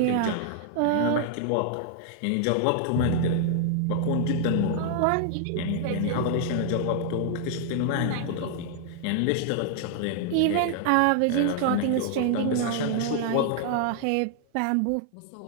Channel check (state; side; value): different; both; correlation 0.00